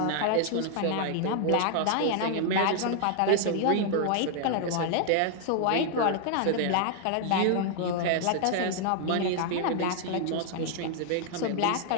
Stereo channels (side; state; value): both; different; correlation 0.00